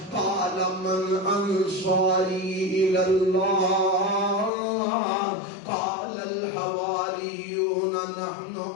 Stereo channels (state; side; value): drops out; right; at 4.5 s